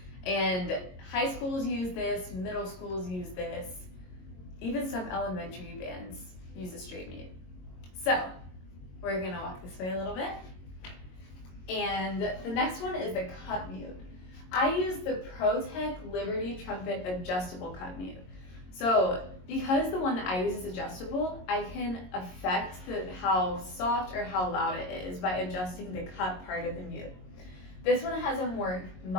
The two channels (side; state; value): right; late; 22 ms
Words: And high schools use this, middle schools use this, even some elementary bands use a straight mute. So we're gonna walk this way a little bit. And the next one is the cup mute. I use the ProTech Liberty Trumpet adjustable cup mute. So because the one that I use is adjustable, I can affect how soft or how loud it is by adjusting the cup part of the mute. This one has a more